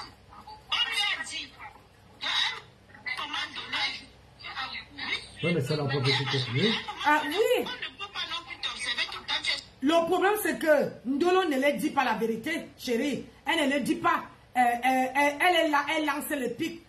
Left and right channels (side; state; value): both; identical; correlation 1.00